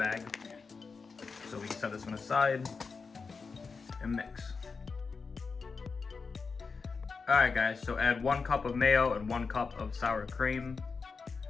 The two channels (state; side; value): quieter; right; 4.8 dB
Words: So we can set this one aside and mix. Alright, guys, so add 1 cup of mayo and 1 cup of sour cream